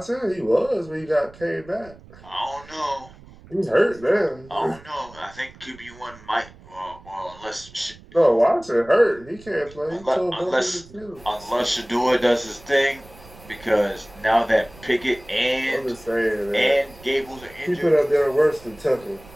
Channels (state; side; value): noise; right; rumble, 22 dB below the sound